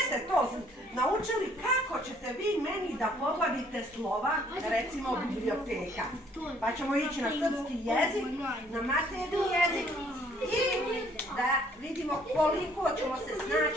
ste to naučili, kako ćete vi meni da poglavite slova, recimo biblioteka. Pa ćemo ići na srpski jezik, na maternji jezik i da vidimo koliko ćemo se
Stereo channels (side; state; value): both; normal; correlation 0.62